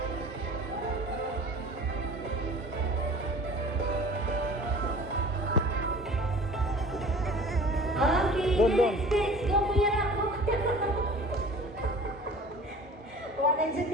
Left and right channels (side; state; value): both; normal; correlation 0.44